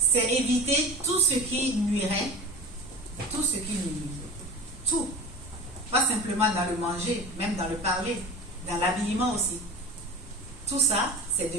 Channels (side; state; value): both; normal; correlation 0.32